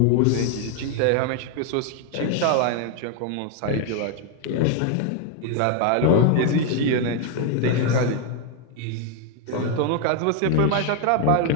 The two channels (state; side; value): different; both; correlation 0.01